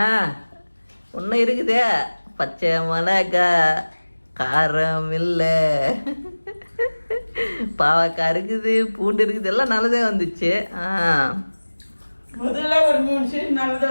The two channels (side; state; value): both; inverted; correlation -1.00